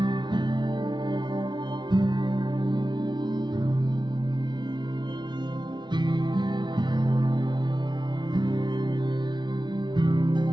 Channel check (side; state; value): left; late; 0.22 ms